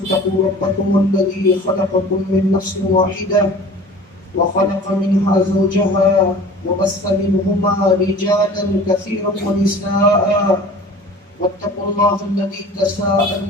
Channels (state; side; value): normal; both; correlation 0.43